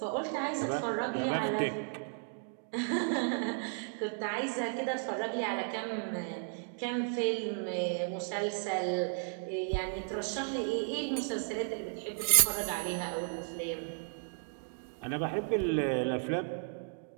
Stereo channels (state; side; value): silent; left; 55 dB below the other